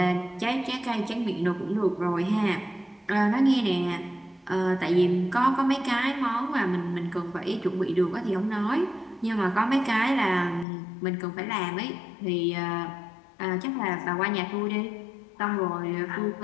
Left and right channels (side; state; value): right; drops out; at 10.7 s